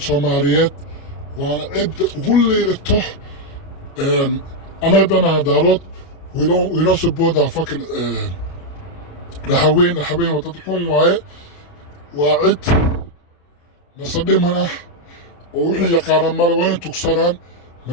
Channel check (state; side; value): late; right; 29 ms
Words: Soomaaliyeed waana cid ugu liidato anaga dana daarood we don't support our fucking raxaween waa dad xun waaye waa cid nasadhiman ah oo wixii yaqaanaan male waa inay tugsanaan